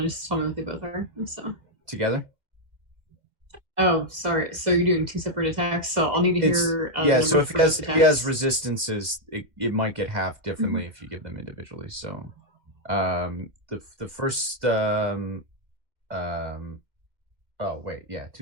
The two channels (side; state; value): left; late; 2.1 ms